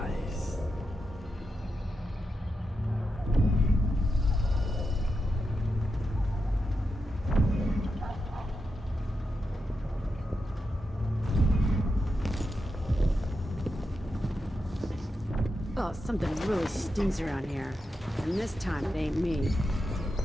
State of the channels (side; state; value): both; normal; correlation 0.87